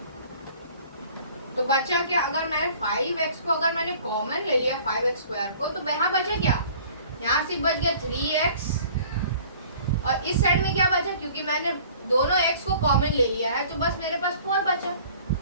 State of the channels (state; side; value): inverted; both; correlation -0.50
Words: तो बचा क्या? अगर मैं 5x को अगर मैंने कॉमन ले लिया 5x स्क्वायर को, तो यहाँ बचा क्या? यहाँ से बच गया 3x और इस साइड में क्या बचा? क्योंकि मैंने दोनों x को कॉमन ले लिया है, तो बस मेरे पास 4 बचा।